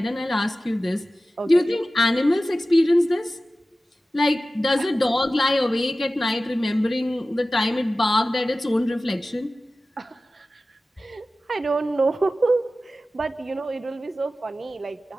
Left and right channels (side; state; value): both; normal; correlation 0.96